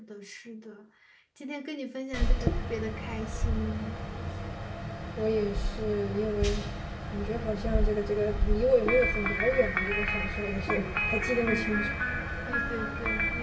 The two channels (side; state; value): both; identical; correlation 1.00